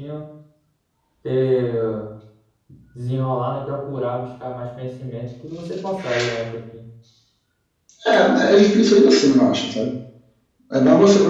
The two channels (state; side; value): identical; both; correlation 1.00